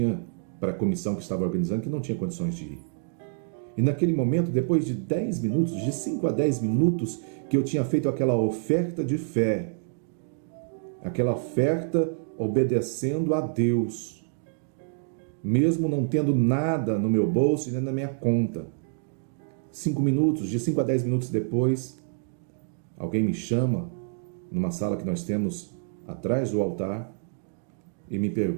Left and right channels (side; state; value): left; silent; digital silence